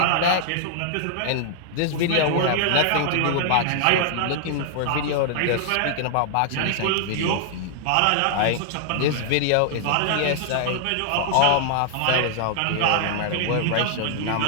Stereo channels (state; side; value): different; both; correlation -0.01